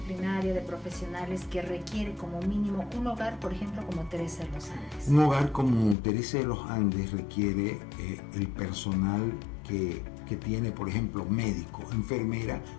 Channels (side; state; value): right; drops out; at 6.0 s